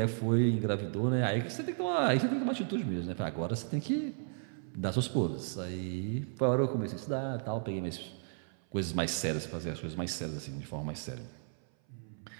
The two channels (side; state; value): left; silent; 55 dB below the other